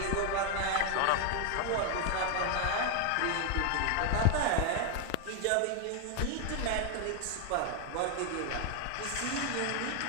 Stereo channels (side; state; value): both; different; correlation 0.00